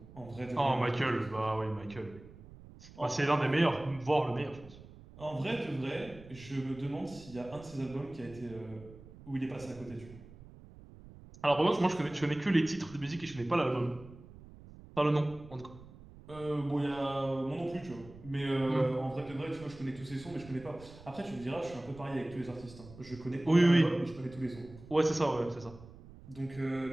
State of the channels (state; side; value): noise; right; rumble, 19 dB below the sound